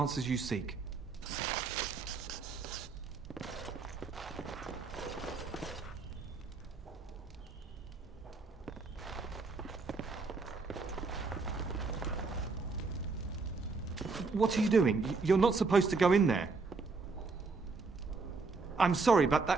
you seek. What are you doing? You're not supposed to go in there. I'm sorry, but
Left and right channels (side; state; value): left; quieter; 4.2 dB